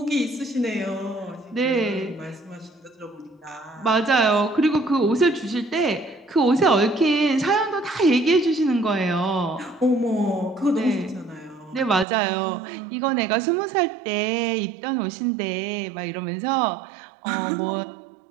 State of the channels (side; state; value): left; drops out; at 12.1 s